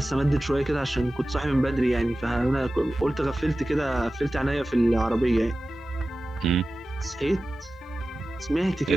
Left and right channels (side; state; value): both; normal; correlation 0.95